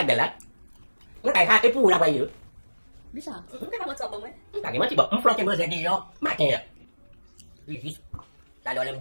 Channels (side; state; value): both; inverted; correlation -1.00